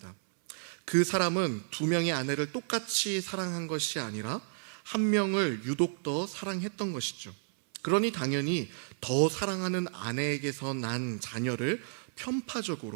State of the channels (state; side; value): silent; left; 57 dB below the other